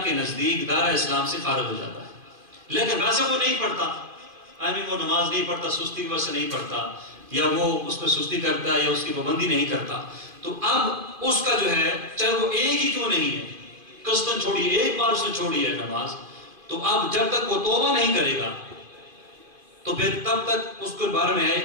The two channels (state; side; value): late; left; 2.5 ms